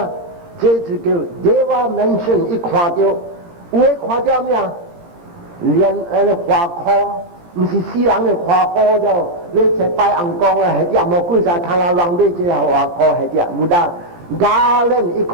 这就叫Deva mention。伊看到，有诶看到咩啊？连花科，毋是死人的花科了，你才拜红光啊，迄只无几啥通人买这个花科，迄只无得garland，伊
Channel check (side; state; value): left; late; 17 ms